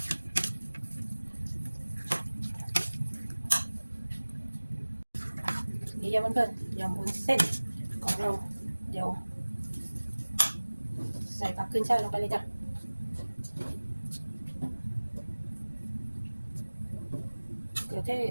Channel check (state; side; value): inverted; both; correlation -1.00